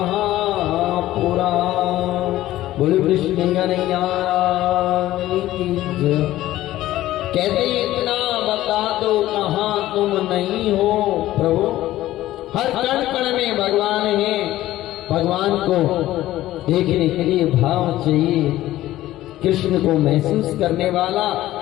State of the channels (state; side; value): quieter; right; 15.0 dB